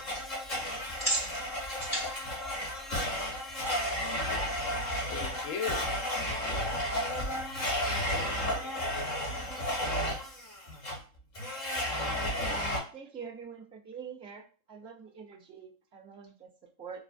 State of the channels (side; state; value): right; late; 3.7 ms